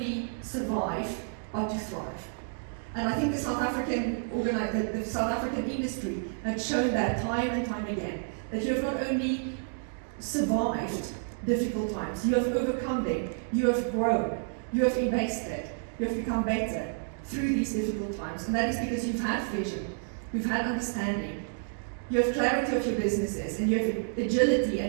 survive, but to thrive. And I think the South African industry has shown that time and time again, that you have not only survived difficult times, you have overcome them, you have grown, you have invested, you have become better through these difficult times. And that is because you've had vision, you've had understanding, you have clarity of your businesses, and you have agility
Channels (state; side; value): silent; left; digital silence